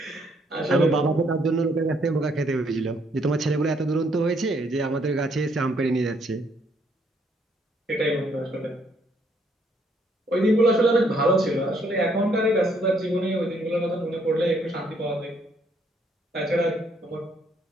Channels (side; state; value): both; normal; correlation 0.69